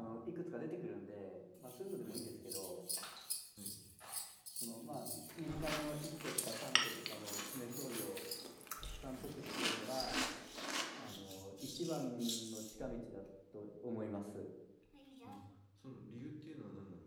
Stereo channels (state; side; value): identical; both; correlation 1.00